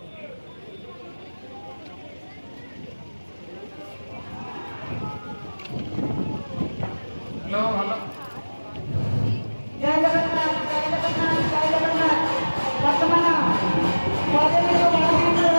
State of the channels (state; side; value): inverted; both; correlation -1.00